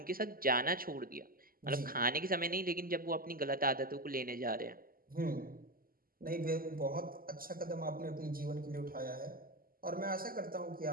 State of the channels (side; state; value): left; late; 0.42 ms